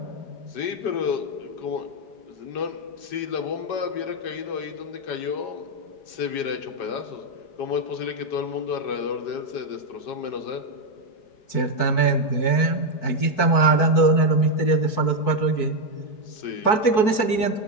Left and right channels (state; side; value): late; right; 4.6 ms